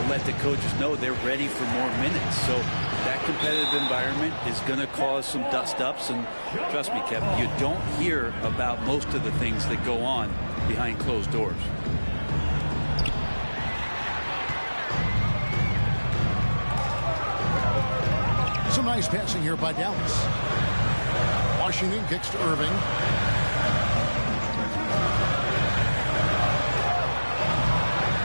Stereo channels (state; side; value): inverted; both; correlation -1.00